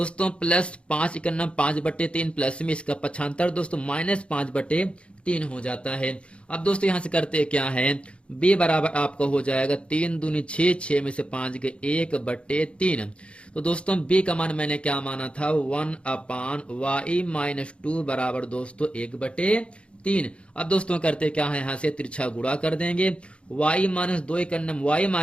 प्लस 5 का नम 5/3 प्लस में इसका पक्षांतर दोस्तों -5/3 हो जाता है। अब दोस्तों यहां से करते क्या है, b बराबर आपका हो जाएगा 3 दूनी 6 6 में से 5 गए 1/3। तो दोस्तों b का मान मैंने क्या माना था, 1/y माइनस 2 बराबर दोस्तों 1/3। अब दोस्तों करते क्या है, यहाँ से तिरछा गुणा कर देंगे, y माइनस 2 का नम y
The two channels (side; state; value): right; late; 0.059 ms